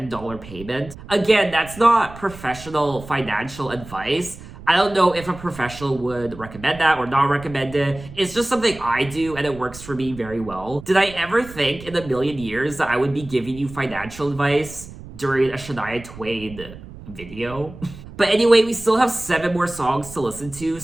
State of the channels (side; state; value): right; noise; rumble, 16 dB below the sound